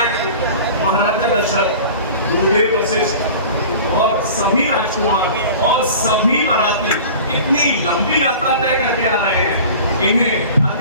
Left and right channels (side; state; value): both; inverted; correlation -0.40